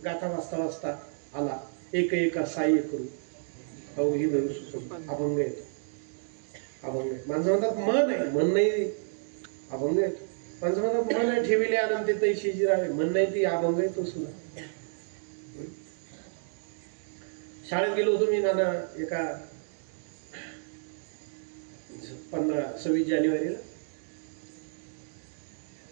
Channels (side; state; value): left; silent; digital silence